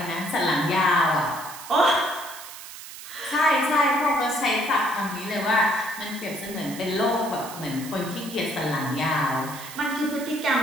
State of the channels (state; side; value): noise; right; hiss, 13 dB below the sound